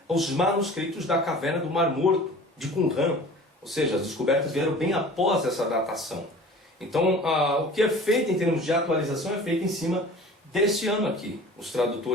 os manuscritos da Caverna do Mar Morto, de Qumran. Ou seja, as descobertas vieram bem após essa datação. Então, o que é feito em termos de atualização é feito em cima deste ano aqui. Os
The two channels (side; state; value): both; normal; correlation 0.43